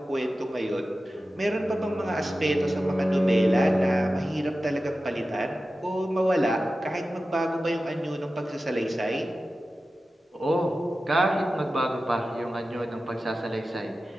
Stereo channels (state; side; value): normal; both; correlation 0.94